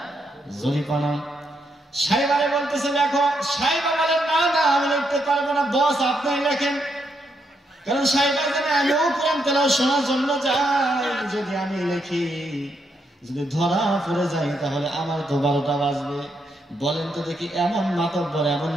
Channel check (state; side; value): normal; both; correlation 0.79